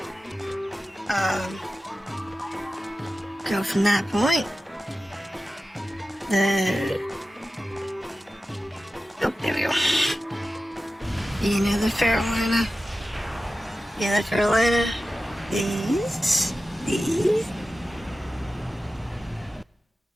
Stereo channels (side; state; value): both; normal; correlation 0.94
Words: go from that point. Oh, there we go. Another Carolina. Another Carolina. These.